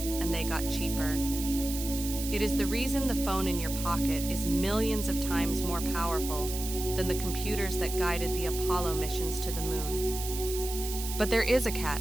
and they got cheaper. It is the reason the phone in your pocket is millions of times more powerful than the computers that guided the Apollo missions to the moon. But there is a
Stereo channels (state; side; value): noise; right; hiss, 7 dB below the sound